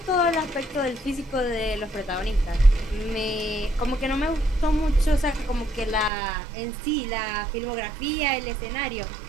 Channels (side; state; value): left; drops out; at 6.1 s